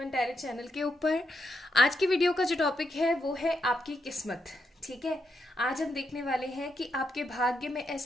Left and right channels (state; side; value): normal; both; correlation 0.82